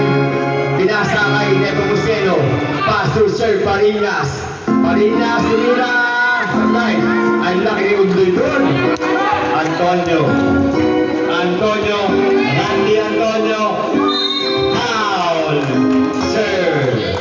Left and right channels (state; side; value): identical; both; correlation 1.00